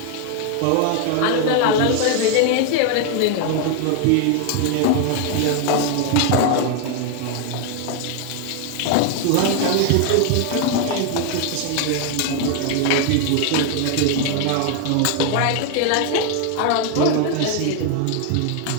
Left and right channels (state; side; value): different; both; correlation 0.01